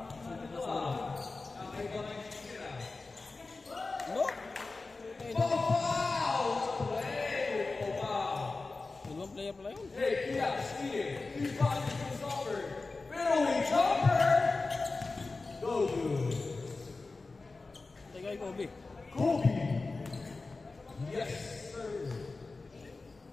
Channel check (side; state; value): right; quieter; 3.7 dB